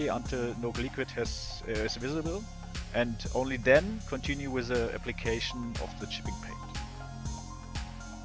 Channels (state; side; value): identical; both; correlation 1.00